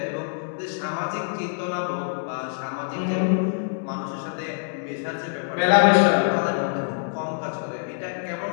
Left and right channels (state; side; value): silent; right; digital silence